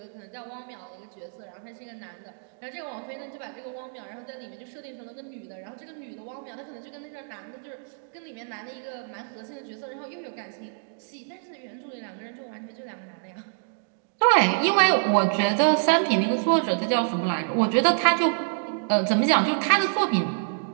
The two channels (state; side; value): silent; left; digital silence